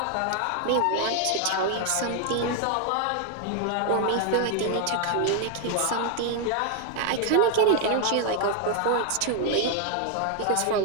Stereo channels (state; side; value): different; both; correlation 0.00